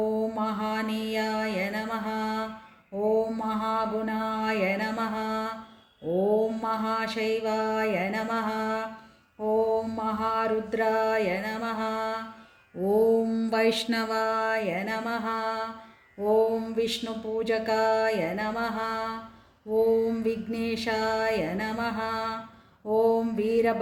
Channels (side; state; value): both; identical; correlation 1.00